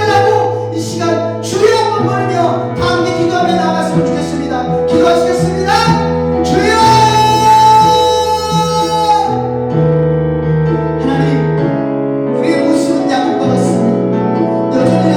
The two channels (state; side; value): identical; both; correlation 1.00